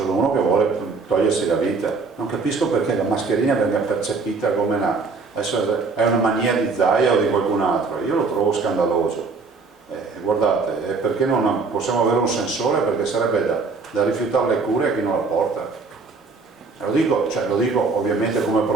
uno che vuole togliersi la vita. Non capisco perché la mascherina venga percepita come è una mania di Zaia o di qualcun altro. Io lo trovo scandaloso. Guardate, perché non possiamo avere un sensore? Perché sarebbe da rifiutare le cure a chi non la porta. Lo dico ovviamente come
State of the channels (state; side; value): quieter; left; 4.4 dB